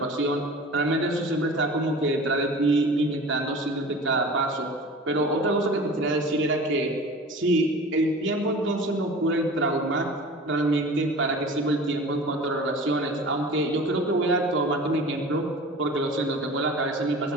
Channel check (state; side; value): normal; both; correlation 0.39